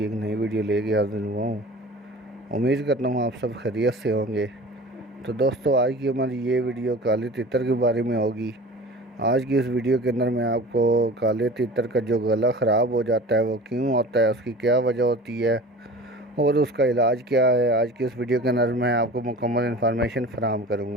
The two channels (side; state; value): both; normal; correlation 0.39